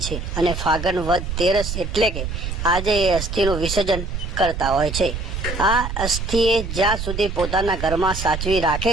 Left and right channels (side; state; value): right; noise; rumble, 5 dB below the sound